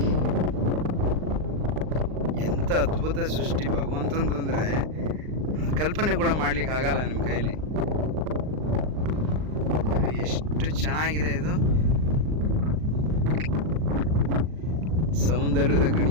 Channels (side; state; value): left; late; 39 ms